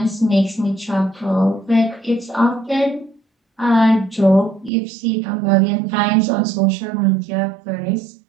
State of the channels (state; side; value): drops out; left; at 4.7 s